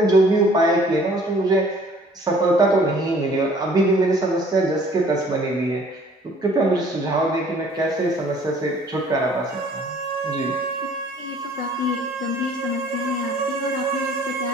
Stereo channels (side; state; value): both; normal; correlation 0.55